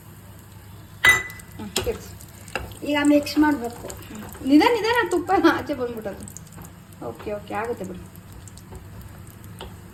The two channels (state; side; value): identical; both; correlation 1.00